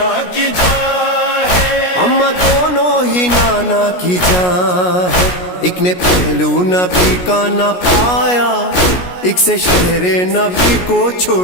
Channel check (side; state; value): right; late; 17 ms